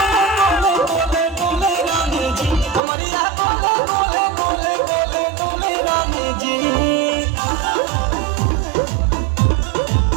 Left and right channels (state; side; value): drops out; left; at 2.8 s